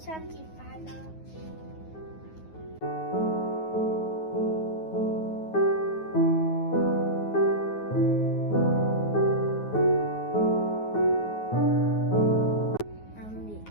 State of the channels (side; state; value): right; late; 9.4 ms